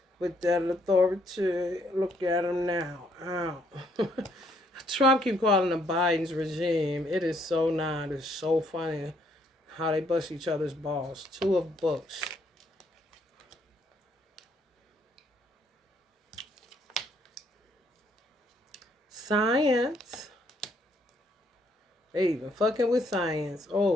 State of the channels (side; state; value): both; normal; correlation 0.69